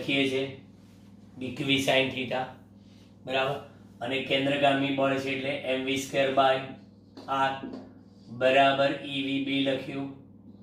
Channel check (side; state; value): both; identical; correlation 1.00